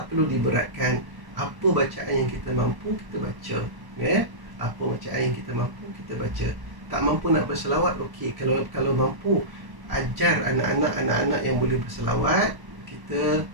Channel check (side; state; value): left; late; 1.1 ms